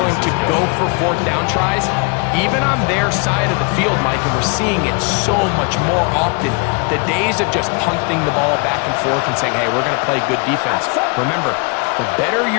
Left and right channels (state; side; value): quieter; right; 33.2 dB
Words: to go for fourth down tries, even on their side of the field, Mike, and we're seeing it so much more often. The days of just punting the ball back and forth and saying, hey, we're going to play good defense. Remember, the better